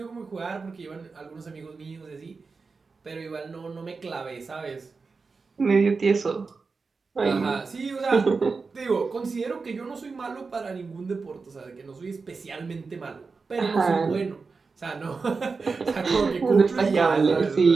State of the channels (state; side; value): quieter; left; 4.5 dB